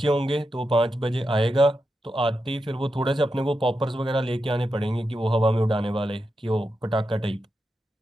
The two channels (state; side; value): normal; both; correlation 0.88